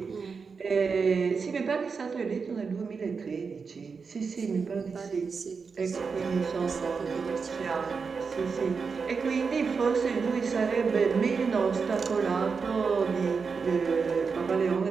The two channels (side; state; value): left; quieter; 5.2 dB